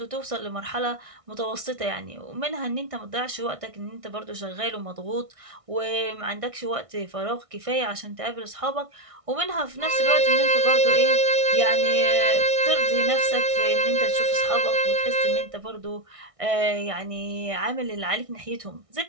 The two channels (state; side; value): late; left; 1.6 ms